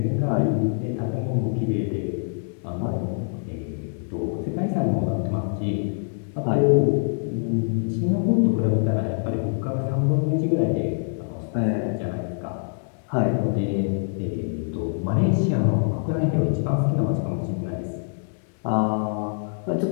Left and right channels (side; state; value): right; silent; digital silence